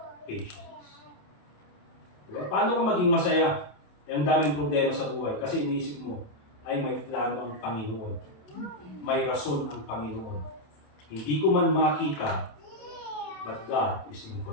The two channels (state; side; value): late; right; 27 ms